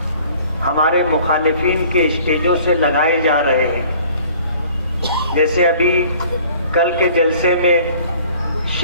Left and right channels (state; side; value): inverted; both; correlation -0.52